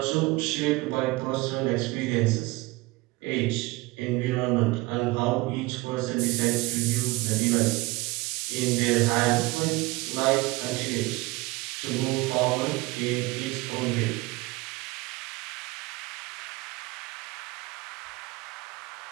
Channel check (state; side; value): quieter; left; 22.2 dB